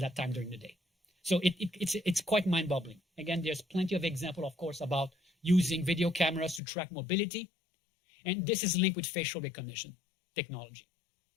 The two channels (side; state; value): right; drops out; at 6.6 s